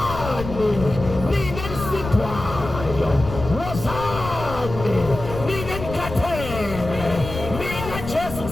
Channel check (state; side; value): noise; left; rumble, 9 dB below the sound